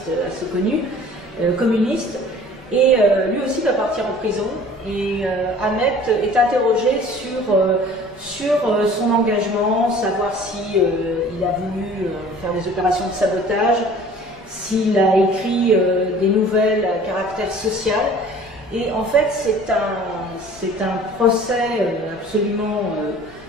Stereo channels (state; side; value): normal; both; correlation 0.48